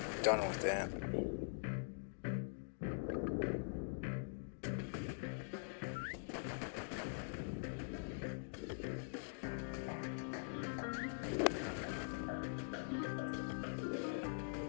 done with it.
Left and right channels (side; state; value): right; silent; digital silence